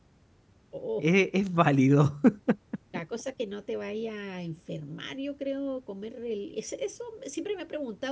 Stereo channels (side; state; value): both; identical; correlation 1.00